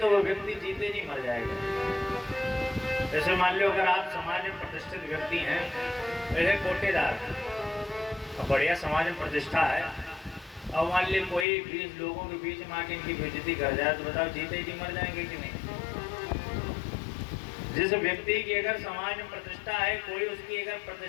वो व्यक्ति जीते जी मर जाएगा। जैसे मान लो अगर आप समाज में प्रतिष्ठित व्यक्ति हैं, वैसे कोटेदार बढ़िया समाज में प्रतिष्ठा है, और मान ली कोई 20 लोगों के बीच में आके इनकी बेइज्जती कर जाए तो बताओ जीते जी मर जाएंगे कि नहीं। जिस व्यक्ति की अगर समाज में प्रतिष्ठा है, कोई उसकी अगर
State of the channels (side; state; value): right; drops out; at 11.5 s